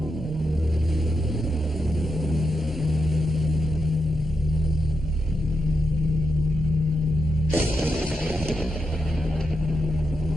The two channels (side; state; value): both; normal; correlation 0.86